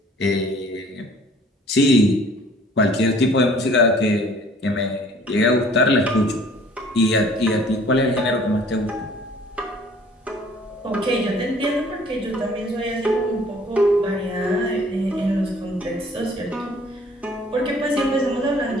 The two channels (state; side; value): normal; both; correlation 0.54